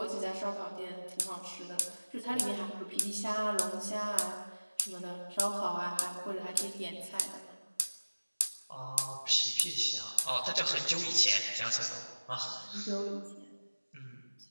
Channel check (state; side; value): inverted; both; correlation -1.00